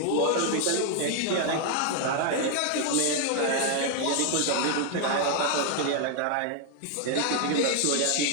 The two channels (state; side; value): different; both; correlation 0.00